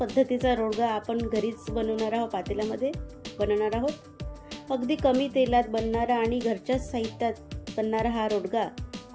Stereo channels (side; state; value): both; identical; correlation 1.00